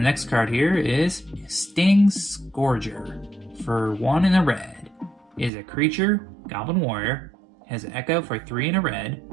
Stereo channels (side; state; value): left; drops out; at 5.5 s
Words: next card here is Sting Scourger. For 1 in a red. It is a creature, Goblin Warrior, has an echo for 3 in a red,